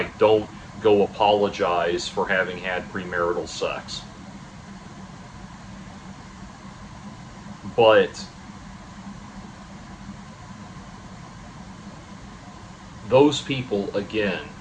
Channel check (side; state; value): both; identical; correlation 1.00